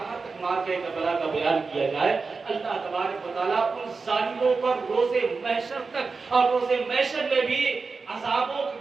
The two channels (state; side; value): quieter; left; 4.4 dB